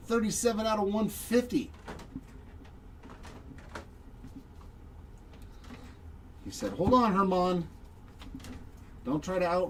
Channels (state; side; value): identical; both; correlation 1.00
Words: 37 out of 150. He said, hold on, Herman. Don't try to